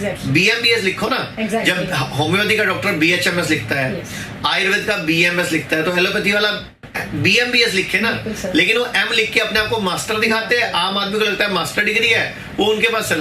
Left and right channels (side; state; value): both; identical; correlation 1.00